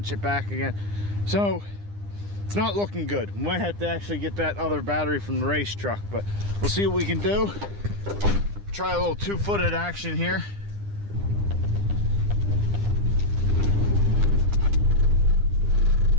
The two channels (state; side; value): late; left; 9.9 ms